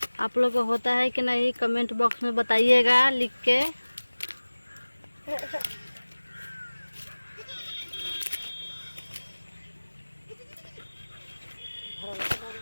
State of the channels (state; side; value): inverted; both; correlation -1.00